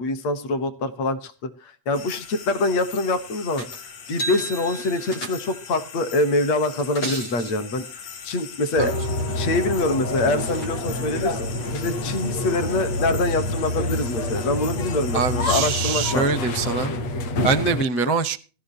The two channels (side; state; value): right; late; 8.2 ms